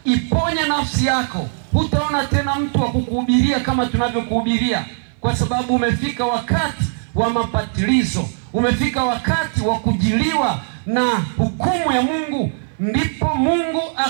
iponye nafsi yako. Hutaona tena mtu wa kukuhubiria kama tunavyokuhubiria, kwa sababu umefika wakati wa mapatilizo, umefika wakati wa kujiliwa na hukumu ya Mungu. Ndipo Mungu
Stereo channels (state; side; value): silent; left; 57 dB below the other